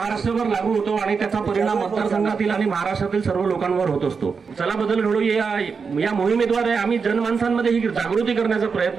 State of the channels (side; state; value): left; quieter; 5.4 dB